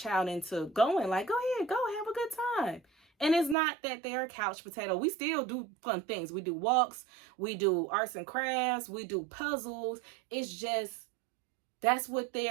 into going, like, go ahead, go have a good time. And it's not that they're a couch potato. We still do fun things. We do walks, we do arts and crafts, we do puzzles. It's just, that's what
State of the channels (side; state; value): left; drops out; at 3.6 s